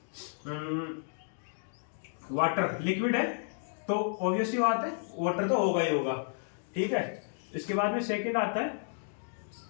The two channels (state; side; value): silent; right; digital silence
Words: वाटर, लिक्विड है तो ऑब्वियसली बात है वाटर तो होगा ही होगा। ठीक है, इसके बाद में सेकंड आता है